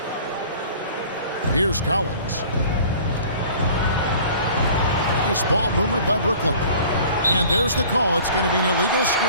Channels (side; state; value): both; inverted; correlation -0.47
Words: Here's Collins. Nice ball movement by Brooklyn. And there's the call. It's going to be an illegal